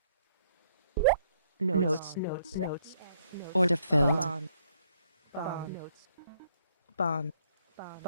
Notes. Notes. Notes. Order filled. Bond. Bond. Notes. Bond. Bond.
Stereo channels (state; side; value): inverted; both; correlation -0.69